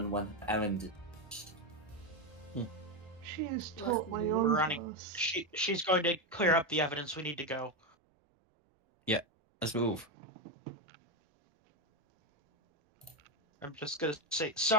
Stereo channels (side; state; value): both; normal; correlation 0.10